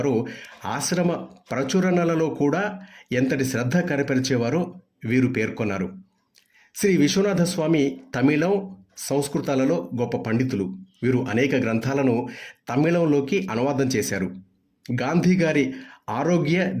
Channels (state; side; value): identical; both; correlation 1.00